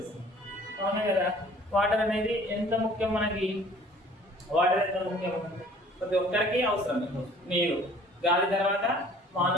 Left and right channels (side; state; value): both; normal; correlation 0.52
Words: అవునా కదా. వాటర్ అనేది ఎంత ముఖ్యం మనకి, వాటర్ ఎంత ముఖ్యం ప్రతి ఒక్కరికి అవసరం. నీరు, గాలి తర్వాత